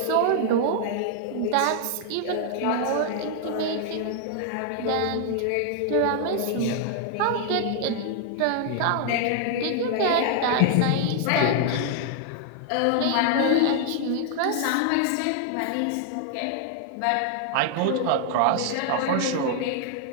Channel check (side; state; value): both; different; correlation 0.00